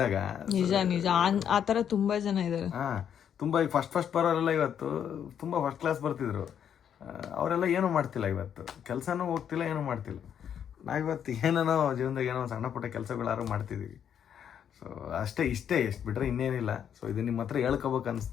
ನಿಜ ಆ ಥರ ತುಂಬ ಜನ ಇದ್ದಾರೆ. ತುಂಬ ಈಗ ಫಸ್ಟ್ ಬರೋರೆಲ್ಲ ಇವತ್ತು ತುಂಬ ಫಸ್ಟ್ ಕ್ಲಾಸ್ ಬರ್ತಿದ್ರು. ಅವರೆಲ್ಲ ಏನೂ ಮಾಡ್ತಿಲ್ಲ, ಇವತ್ತು ಕೆಲಸನೂ ಹೋಗ್ತಿಲ್ಲ, ಏನೂ ಮಾಡ್ತಿಲ್ಲ. ನಾವಿವತ್ತು ಏನೇನೋ ಜೀವನದಾಗ ಏನೋ ಸಣ್ಣ ಪುಟ್ಟ ಕೆಲಸಗಳಾರು ಮಾಡ್ತಿದ್ದೀವಿ. ಸೊ ಅಷ್ಟೇ, ಎಷ್ಟು ಬಿಟ್ಟರೆ ಇನ್ನೇನಿಲ್ಲ. ಸೊ ಇದು ನಿಮ್ಮ ಹತ್ರ ಹೇಳ್ಕೊಬೇಕು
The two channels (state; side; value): quieter; right; 8.8 dB